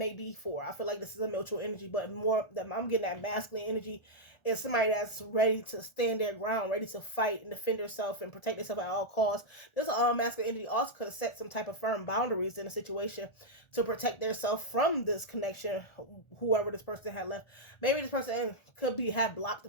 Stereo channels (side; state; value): right; late; 1.4 ms